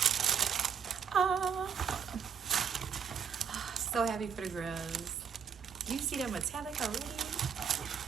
So happy for the girls. You see that metallic already?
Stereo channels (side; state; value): left; quieter; 7.2 dB